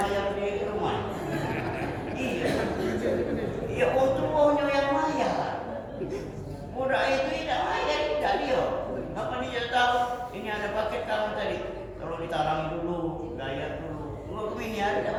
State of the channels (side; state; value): both; identical; correlation 1.00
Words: di rumah. Iya. Ya untungnya yang bayar. Budak itu tidak bayar, tidak dia. Apa dia tahu? Ini ada paket kamu tadi. Kalau ditarangi dulu, bayar dulu. Enggak ini ada